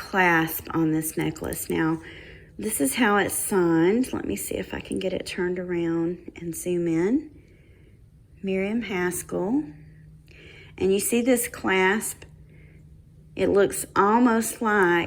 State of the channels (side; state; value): both; identical; correlation 1.00